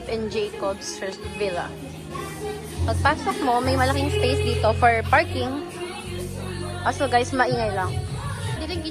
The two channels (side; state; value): both; identical; correlation 1.00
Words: and Jacob's first villa. Pagpasok mo, may malaking space dito for parking. Also guys, maingay lang. Dito yung